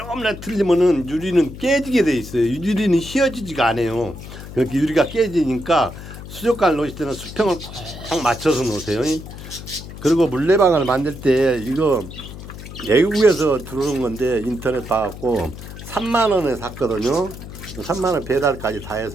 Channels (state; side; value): noise; left; hum, 13 dB below the sound